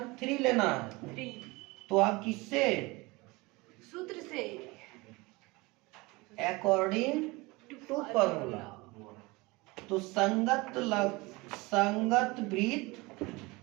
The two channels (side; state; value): left; quieter; 23.7 dB